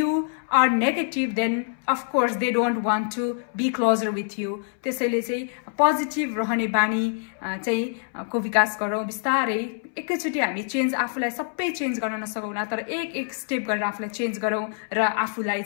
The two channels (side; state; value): right; silent; 62 dB below the other